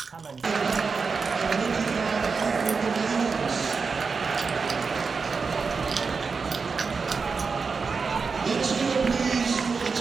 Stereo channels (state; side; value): quieter; left; 5.0 dB